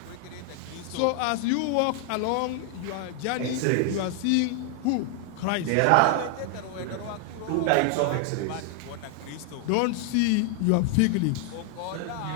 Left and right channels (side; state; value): both; different; correlation 0.00